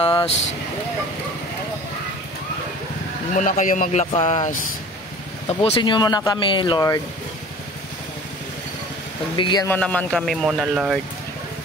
Huwag muna kayo maglakas. Tapusin nyo muna kami, Lord. Pagbigyan mo naman kami muna, Lord.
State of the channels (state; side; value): normal; both; correlation 0.43